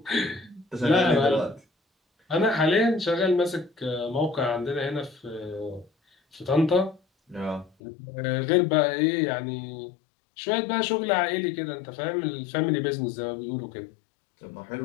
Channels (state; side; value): drops out; right; at 7.7 s